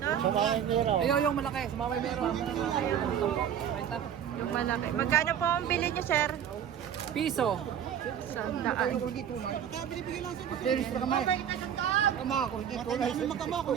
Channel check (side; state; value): left; quieter; 9.2 dB